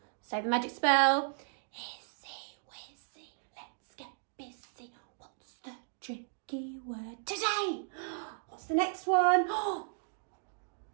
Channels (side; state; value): left; silent; digital silence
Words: say the magic spell. Easy, wizzy, let's get busy. What's the tricky word today? What's the next one?